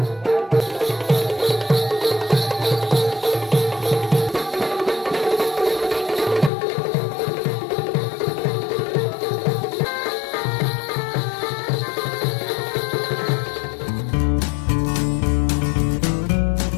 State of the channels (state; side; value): drops out; right; at 6.5 s